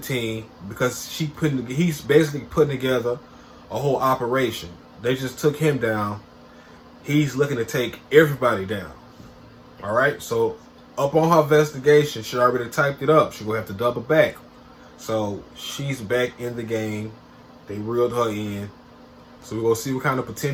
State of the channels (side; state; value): both; identical; correlation 1.00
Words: because he's basically putting together a whole operation. They just took him down. He's looking to take everybody down. All right, so up on her investigation, she already typed it up. She gonna have to double back. So she's back in the game. They reeled her in. So we're gonna see what kind of